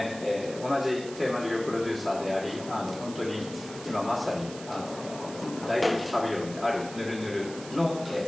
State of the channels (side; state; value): right; noise; hiss, 15 dB below the sound